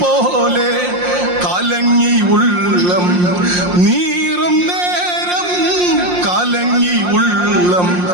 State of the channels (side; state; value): left; late; 5.6 ms